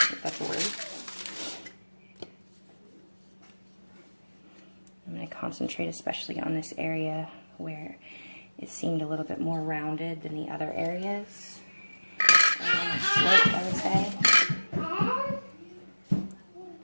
that's a word. concentrate especially on this area where it seemed a little bit more rounded than the other areas. Slope, I would say.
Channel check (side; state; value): both; inverted; correlation -1.00